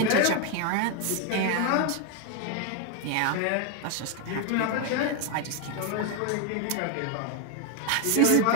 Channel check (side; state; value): both; different; correlation 0.01